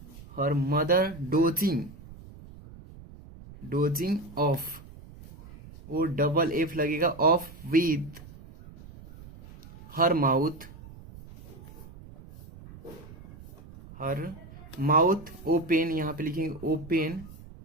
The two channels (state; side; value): noise; right; rumble, 18 dB below the sound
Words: हर मदर डोजिंग ऑफ, वो डबल एफ लगेगा, of with her mouth open, यहाँ पे लिखेंगे ओपन,